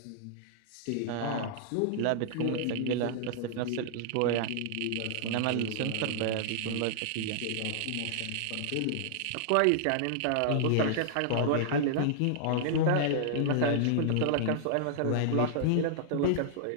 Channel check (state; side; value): different; both; correlation -0.01